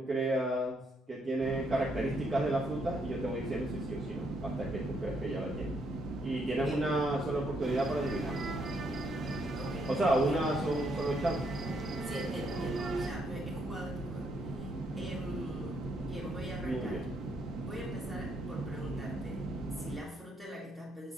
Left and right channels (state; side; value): normal; both; correlation 0.74